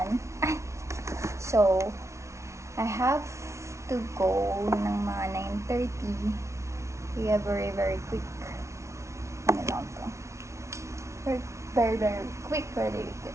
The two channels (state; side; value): late; left; 0.14 ms